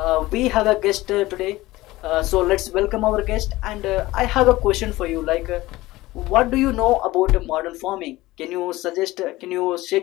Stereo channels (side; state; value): right; quieter; 18.4 dB